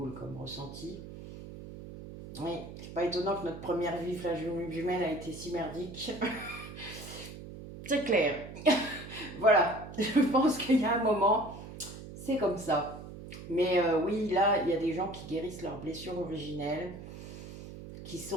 comme ressenti. Oui, c'est pas étonnant que notre première vie flamme jumelle a été si merdique. C'est clair. Voilà, je pense qu'il y a un moment, c'est comme ça. Mais oui, là, il y a des gens qui guérissent leurs blessures originelles, qui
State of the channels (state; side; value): noise; right; hum, 12 dB below the sound